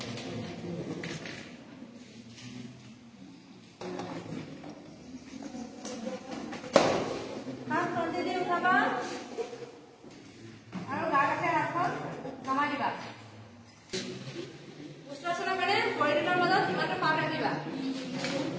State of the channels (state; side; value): identical; both; correlation 1.00